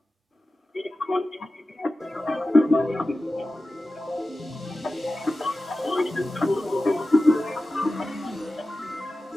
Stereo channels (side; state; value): both; normal; correlation 0.94